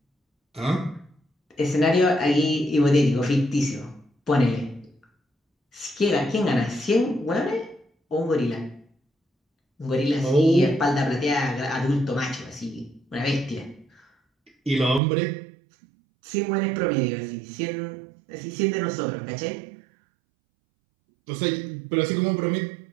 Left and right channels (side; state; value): left; drops out; at 15.0 s